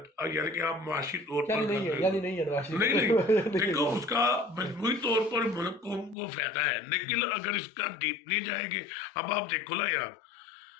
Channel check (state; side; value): drops out; right; at 6.2 s